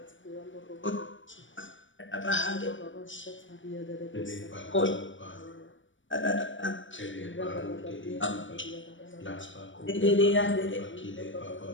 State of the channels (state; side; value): late; right; 0.56 ms